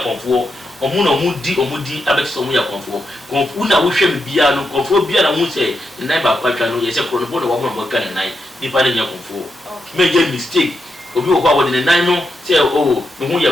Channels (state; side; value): normal; both; correlation 0.84